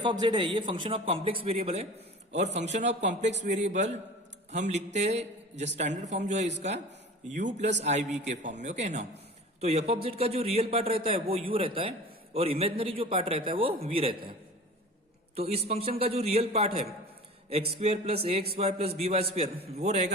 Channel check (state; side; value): normal; both; correlation 0.38